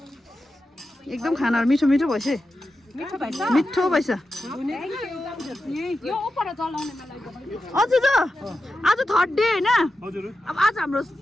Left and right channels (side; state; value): both; normal; correlation 0.90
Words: एकदम खानाहरू मिठो भएछ मिठो भएछ हजुर आज थर्ड डे होइन अब आज हाम्रो